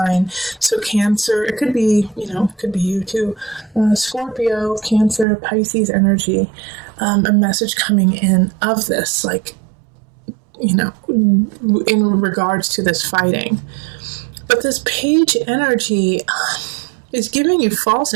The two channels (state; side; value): drops out; left; at 5.2 s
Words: So Cancer, it could be, it could be you too. Scorpio, Cancer, Pisces energy. A message coming in of this, like, in regards to this fighting. But this Page energy is giving you false